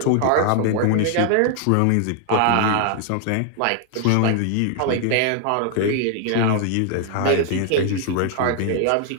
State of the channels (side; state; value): both; different; correlation 0.00